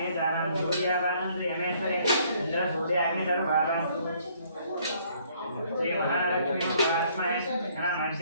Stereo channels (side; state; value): both; inverted; correlation -0.63